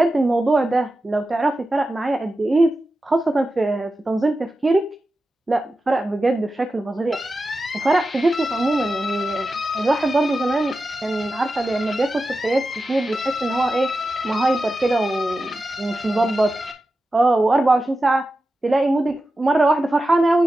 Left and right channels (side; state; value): both; normal; correlation 0.92